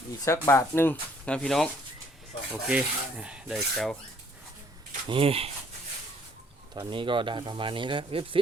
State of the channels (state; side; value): normal; both; correlation 0.62